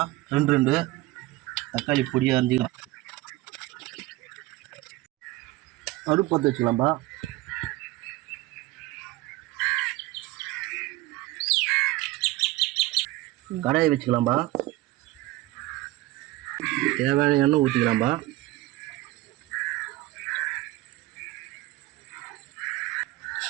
ரெண்டு தக்காளி பொடியாக அரிஞ்சிக்கலாம். அடுப்பு பற்ற வச்சுக்கலாம்பா. கடாயை வச்சுக்கலாம்பா. தேவையான எண்ணெய் ஊற்றிக்கலாம்பா.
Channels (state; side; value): quieter; left; 18.4 dB